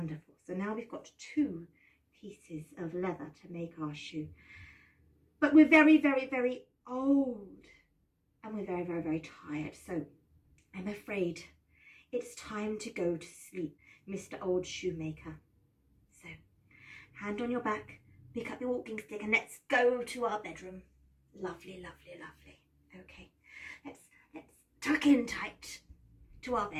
So now we've got 2 pieces of leather to make our shoe. But we're very, very, very old, and we're very, very, very tired. So I'm afraid it's time to go to sleep, Mr. Old Shoemaker. So hand on your back, pick up your walking stick, and let's go to our bedroom. Lovely, lovely, lovely. Okay, let's tuck in tight to our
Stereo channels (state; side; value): identical; both; correlation 1.00